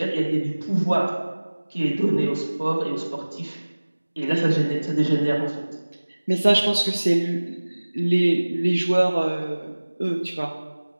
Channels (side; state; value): both; inverted; correlation -1.00